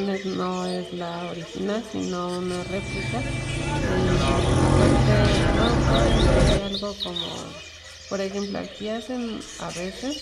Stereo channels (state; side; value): identical; both; correlation 1.00